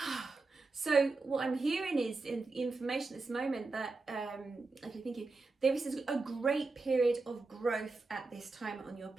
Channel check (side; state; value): left; quieter; 3.7 dB